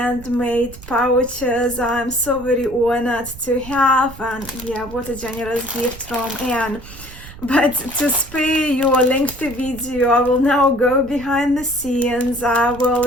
pouches I'm so very honored to have, and yeah, what a generous gift from Anne. But to spare you a lengthy video, I will now go behind the scenes. I will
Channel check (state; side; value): noise; right; rumble, 16 dB below the sound